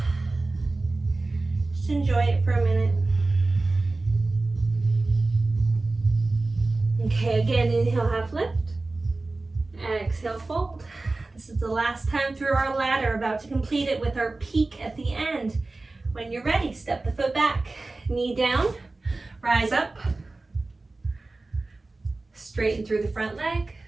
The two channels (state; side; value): quieter; left; 3.2 dB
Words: Just enjoy it for a minute. Okay, again, inhale, half lift. Exhale, fold. This is the last time through our ladder, about to complete it with our peak at the end. When you're ready, step the foot back, knee down, rise up, straighten through the front leg,